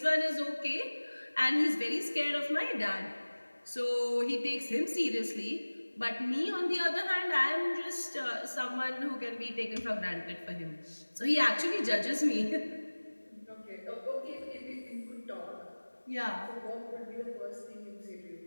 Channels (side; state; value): both; inverted; correlation -1.00